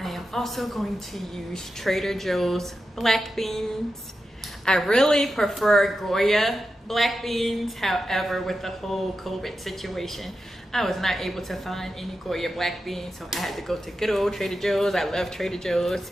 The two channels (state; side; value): normal; both; correlation 0.90